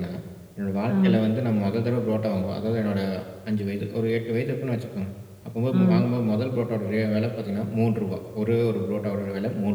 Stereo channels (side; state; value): both; identical; correlation 1.00